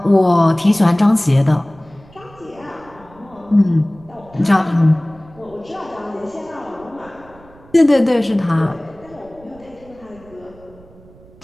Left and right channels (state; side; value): noise; right; rumble, 25 dB below the sound